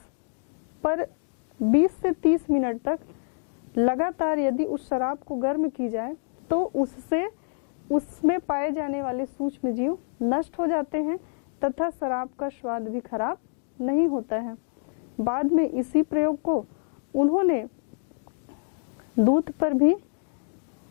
पर 20 से 30 मिनट तक लगातार यदि उस शराब को गर्म की जाए तो उससे उसमें पाए जाने वाले सूक्ष्म जीव नष्ट हो जाते हैं तथा शराब का स्वाद भी खराब नहीं होता है। बाद में इसी प्रयोग को उन्होंने दूध पर भी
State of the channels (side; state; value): right; silent; 60 dB below the other